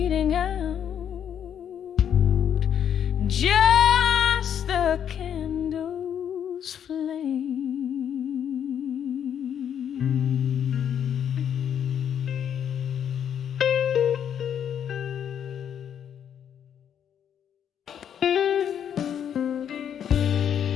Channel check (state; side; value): quieter; right; 8.9 dB